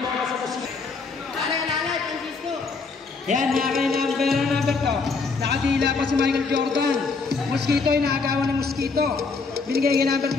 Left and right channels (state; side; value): quieter; right; 4.4 dB